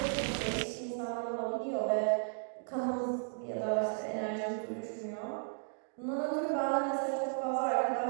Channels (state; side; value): silent; left; digital silence